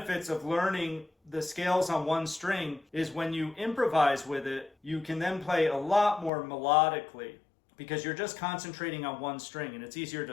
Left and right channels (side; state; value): right; drops out; at 6.3 s